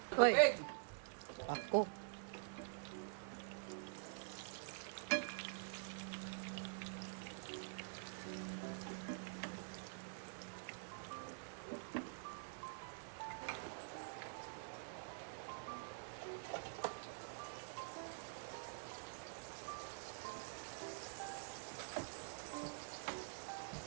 Hoy, Tubig! ako.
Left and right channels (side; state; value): left; silent; digital silence